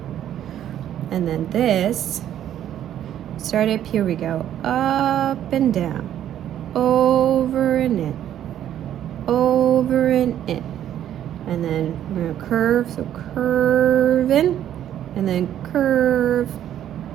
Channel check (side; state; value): left; quieter; 11.0 dB